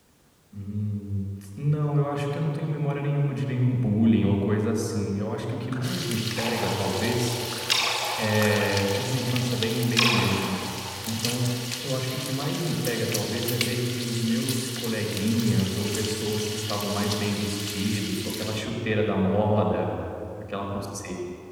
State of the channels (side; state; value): both; identical; correlation 1.00